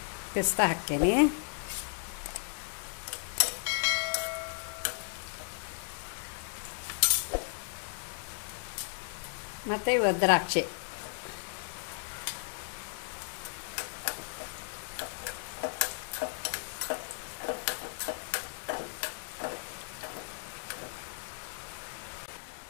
ಪಿಸ್ತಾ ಹಾಕ್ತೀನಿ. ಮತ್ತು ದ್ರಾಕ್ಷಿ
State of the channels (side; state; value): right; silent; 54 dB below the other